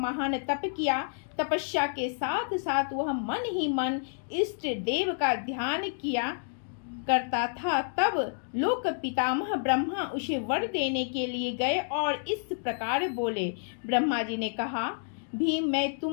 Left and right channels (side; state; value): right; silent; digital silence